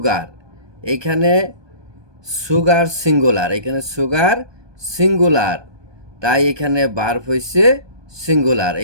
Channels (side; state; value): left; late; 1.2 ms